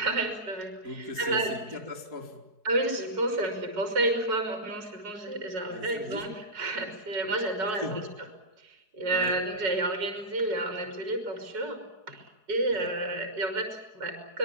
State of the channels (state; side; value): late; left; 4.7 ms